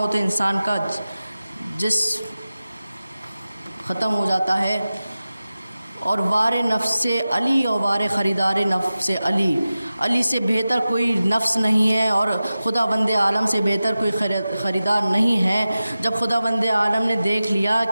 تو انسان کا جسم ختم ہو جاتا ہے، اور وار نفس سے علی اور وار خریدار نفس سے علی، علی سے بہتر کوئی نفس نہیں ہے اور خدا بند عالم سے بہتر کوئی خریدار نہیں ہے۔ جب خدا بند عالم نے دیکھ لیا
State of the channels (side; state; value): both; inverted; correlation -0.95